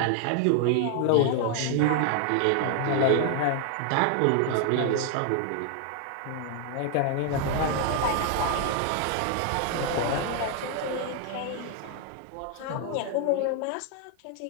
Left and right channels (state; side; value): different; both; correlation 0.00